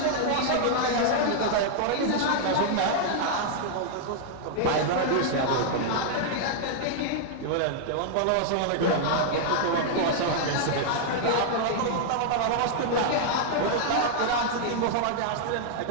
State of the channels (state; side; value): different; both; correlation -0.01